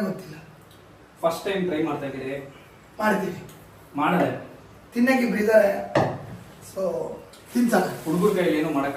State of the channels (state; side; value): identical; both; correlation 1.00